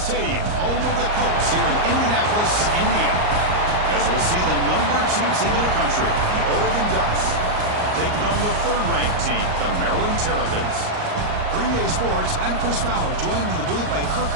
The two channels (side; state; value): left; late; 38 ms